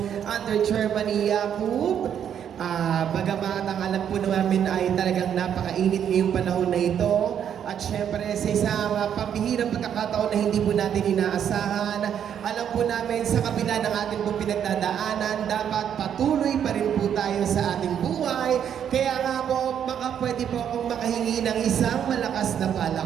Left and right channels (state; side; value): quieter; left; 8.9 dB